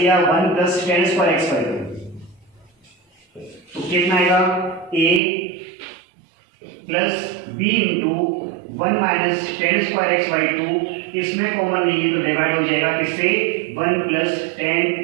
1 plus ten square x by two, तो कितना आएगा a plus b into 1 minus ten square x by two, इसमें कॉमन नहीं है तो डिवाइड हो जाएगा किससे, 1 plus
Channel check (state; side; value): drops out; left; at 5.2 s